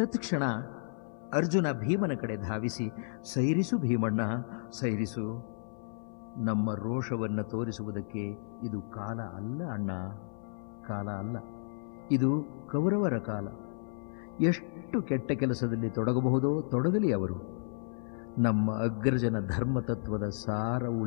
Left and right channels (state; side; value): silent; right; 56 dB below the other